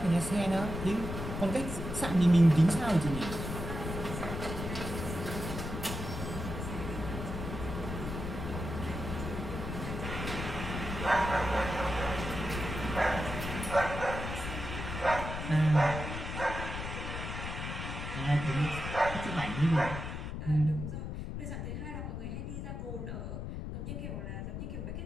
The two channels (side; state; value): left; noise; rumble, 5 dB below the sound